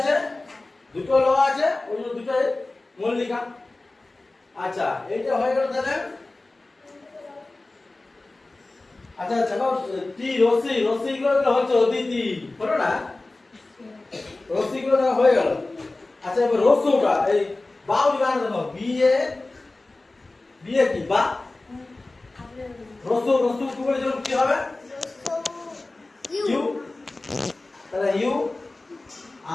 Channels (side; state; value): right; quieter; 3.1 dB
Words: দুটো ল আছে ওই জন্য দুটো মল্লিকা আচ্ছা এইটা হয়ে গেল তাহলে আচ্ছা দেখো টি রসি রসি গুলো হচ্ছে অদিতি বলো না রসি গুলো হয়ে গেল আচ্ছা এবার রসুটা এই বাউ গান দেখো বি এ কি বা রসু রসু কি বলে কি হবে ইউ তাহলে ইউ